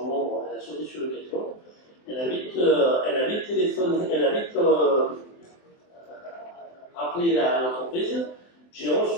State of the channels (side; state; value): right; late; 23 ms